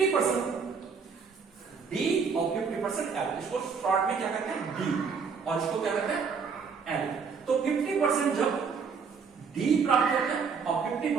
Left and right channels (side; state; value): left; quieter; 5.7 dB